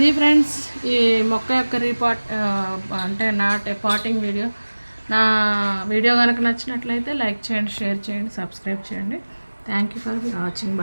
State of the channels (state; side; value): inverted; both; correlation -1.00